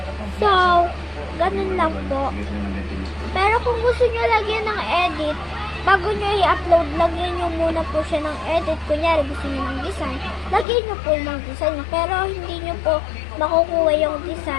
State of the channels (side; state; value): right; drops out; at 10.7 s